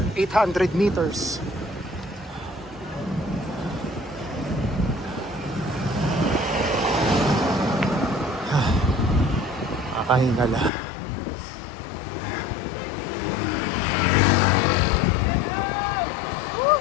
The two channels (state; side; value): drops out; right; at 10.7 s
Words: 800 meters. Kakahinga na.